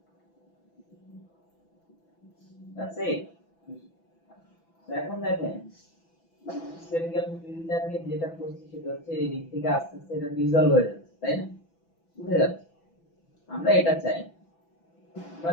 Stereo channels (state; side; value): late; right; 6.0 ms